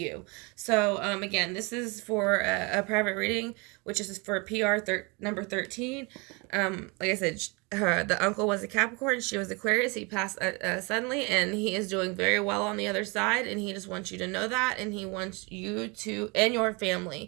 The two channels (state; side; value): quieter; left; 29.1 dB